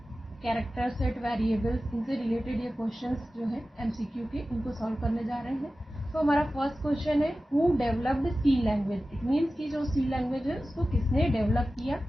character set, variables, इनसे रिलेटेड ये क्वेश्चंस जो है MCQ के, इनको सॉल्व करने जा रहे हैं। तो हमारा फर्स्ट क्वेश्चन है, who developed C language. It means कि जो सी लैंग्वेज है उसको किसने डेवलप किया।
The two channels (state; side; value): normal; both; correlation 0.95